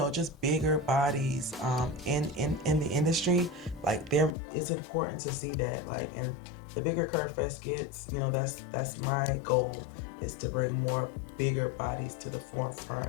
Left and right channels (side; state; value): right; drops out; at 4.4 s